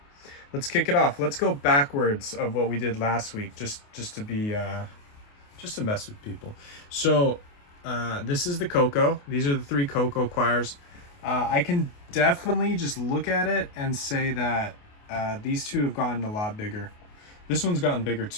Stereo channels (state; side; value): late; right; 28 ms